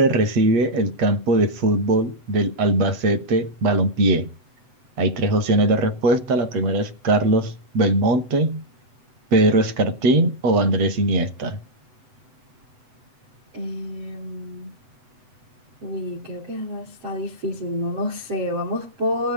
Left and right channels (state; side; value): late; left; 8.0 ms